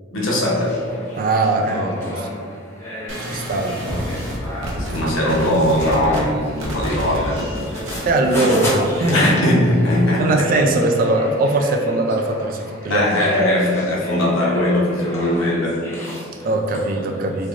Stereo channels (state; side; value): normal; both; correlation 0.34